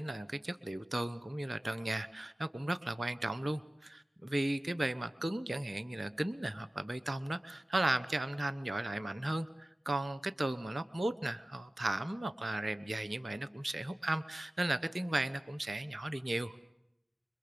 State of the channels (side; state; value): both; normal; correlation 0.97